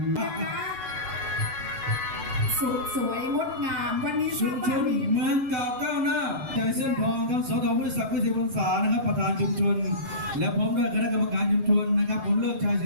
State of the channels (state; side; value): late; left; 6.6 ms